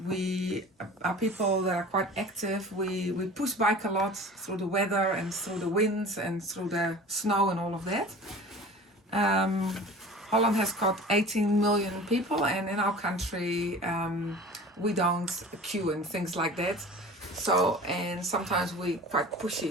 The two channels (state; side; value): normal; both; correlation 0.40